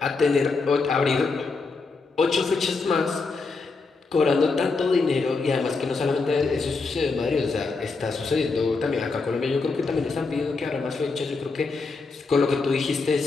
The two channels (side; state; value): right; quieter; 4.1 dB